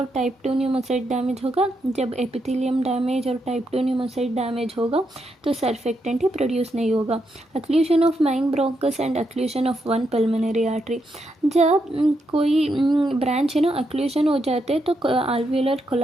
टाइप 2 न्यूमोसाइट डैमेज होगा। जब एपिथेलियम डैमेज और टाइप 2 न्यूमोसाइट डैमेज होगा तो सर्फेक्टेंट ही प्रोड्यूस नहीं होगा। Occlusion of main bronchus and occlusion of one pulmonary artery. जब कोई ब्रांच है ना अक्लूशन हो जाते हैं तो आल्वियोलर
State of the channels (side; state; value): both; normal; correlation 0.81